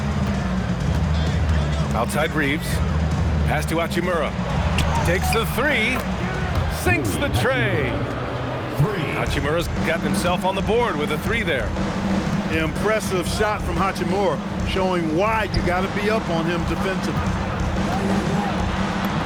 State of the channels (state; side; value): identical; both; correlation 1.00